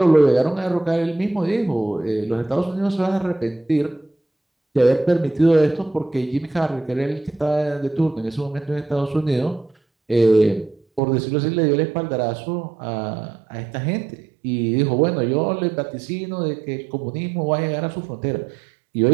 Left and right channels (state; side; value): drops out; left; at 11.0 s